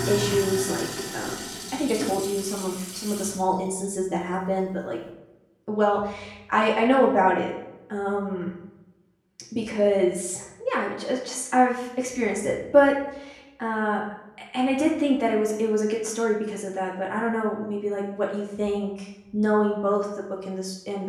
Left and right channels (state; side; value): identical; both; correlation 1.00